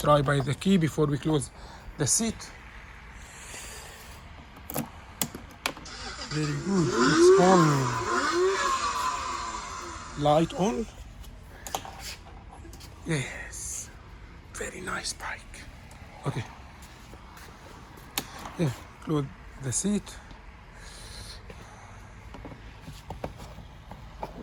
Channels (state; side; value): identical; both; correlation 1.00